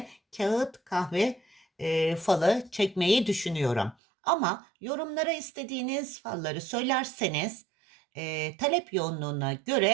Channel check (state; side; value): drops out; left; at 4.0 s